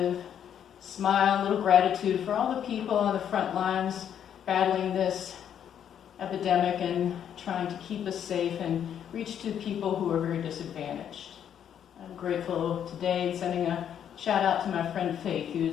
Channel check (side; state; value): right; quieter; 9.2 dB